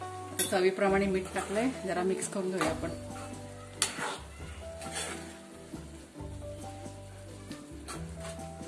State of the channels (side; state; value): both; identical; correlation 1.00